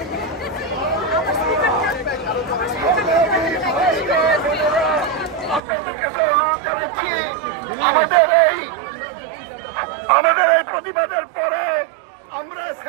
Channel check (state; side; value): drops out; left; at 5.6 s